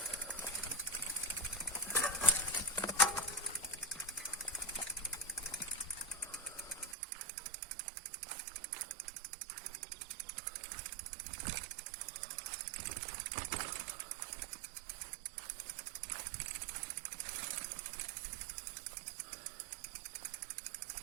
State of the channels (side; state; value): left; drops out; at 7.0 s